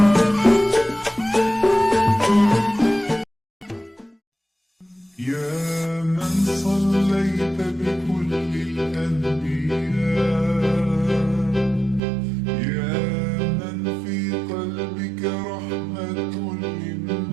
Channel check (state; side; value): drops out; left; at 12.0 s